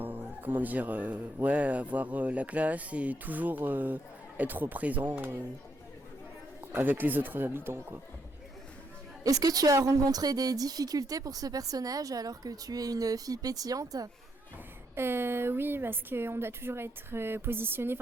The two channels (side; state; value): both; normal; correlation 0.76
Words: la classe et toujours être présent avec les autres habitants, quoi. Est-ce que tu as rencontré des difficultés pour ce personnage alors que tu es une fille pétillante ? Oui, parce qu'on doit toujours être positionné,